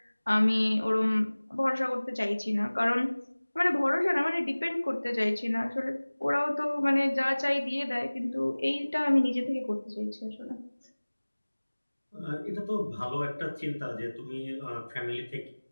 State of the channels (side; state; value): both; inverted; correlation -1.00